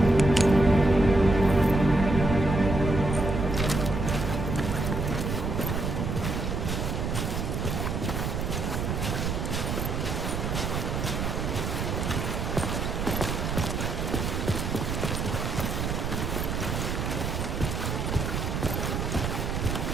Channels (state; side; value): noise; right; rumble, 1 dB below the sound